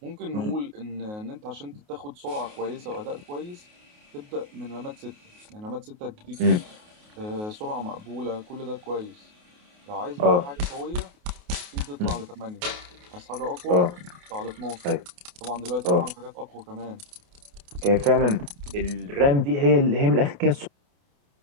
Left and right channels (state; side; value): late; left; 28 ms